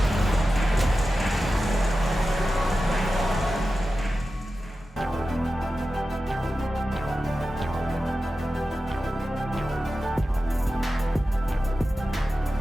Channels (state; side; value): normal; both; correlation 0.93